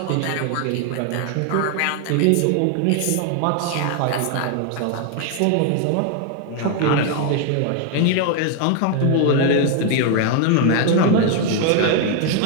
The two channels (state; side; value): different; both; correlation 0.01